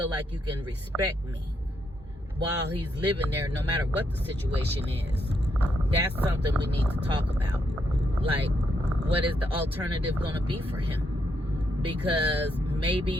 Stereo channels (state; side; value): normal; both; correlation 0.78